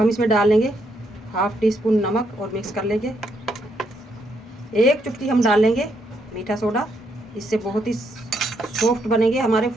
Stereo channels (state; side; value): normal; both; correlation 0.76